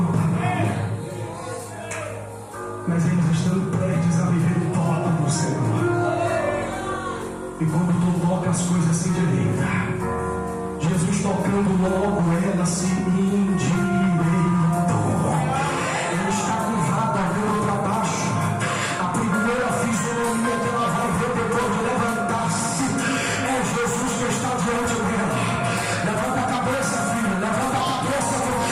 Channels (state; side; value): identical; both; correlation 1.00